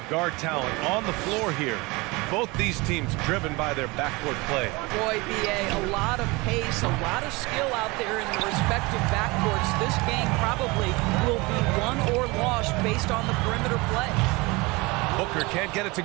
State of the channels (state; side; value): quieter; left; 24.6 dB